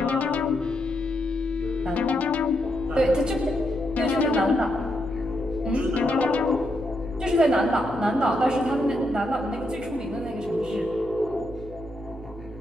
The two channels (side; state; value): left; noise; hum, 25 dB below the sound